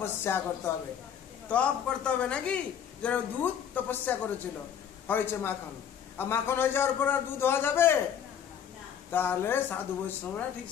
করতে হবে, তপ করতে হবে, নাকি? যারা দুধ তপস্যা করেছিল, হয়েছে মাখন। আর মাখন হয়ে যাওয়ার পর আর দুধ হওয়া যাবে? তাহলে সাধু বৈষ্ণবরা ঠিক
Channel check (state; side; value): quieter; right; 8.6 dB